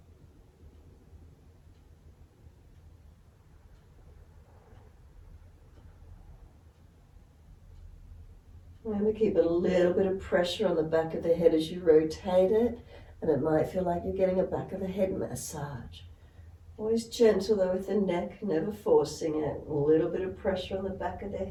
Remember, keep a little bit of pressure on the back of the head as you rotate it, and it might feel like you're getting a back of the head massage. Always gentle though with the neck, never forcing it. A little bit of pressure on the back of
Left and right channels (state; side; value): identical; both; correlation 1.00